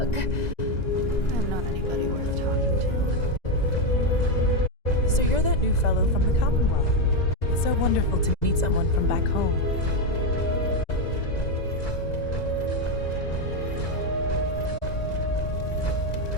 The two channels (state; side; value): late; right; 2.0 ms